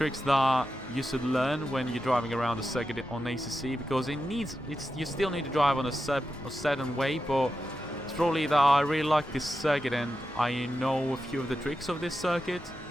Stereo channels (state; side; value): noise; left; hum, 22 dB below the sound